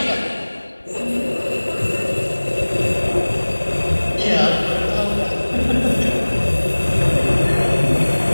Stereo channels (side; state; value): both; inverted; correlation -1.00